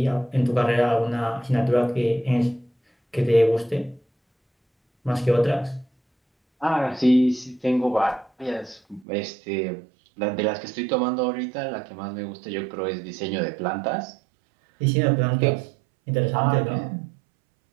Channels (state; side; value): drops out; left; at 9.1 s